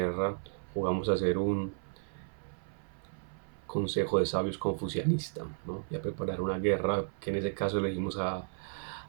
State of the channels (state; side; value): silent; left; 55 dB below the other